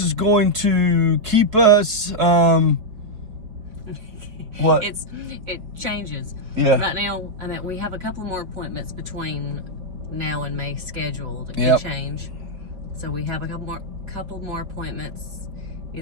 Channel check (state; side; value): late; left; 4.4 ms